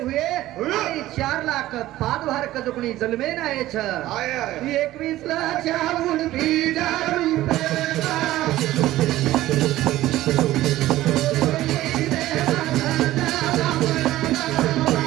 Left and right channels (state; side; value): quieter; left; 15.5 dB